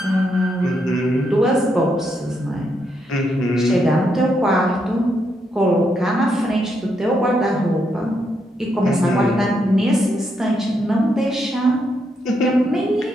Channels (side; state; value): both; normal; correlation 0.79